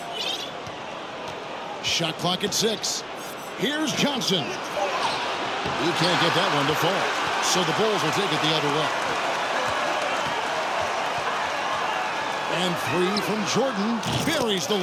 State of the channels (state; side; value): identical; both; correlation 1.00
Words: Shot clock at 6. Here's Johnson. He can't get that one to fall. So the Bulls will take it the other way. And 3 from Jordan. Buries the